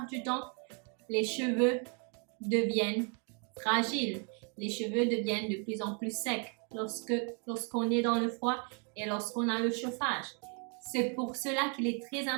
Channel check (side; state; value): left; quieter; 38.0 dB